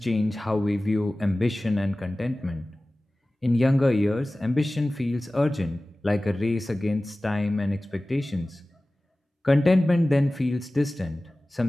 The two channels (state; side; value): normal; both; correlation 0.97